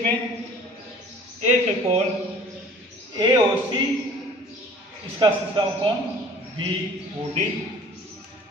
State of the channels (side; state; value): both; normal; correlation 0.49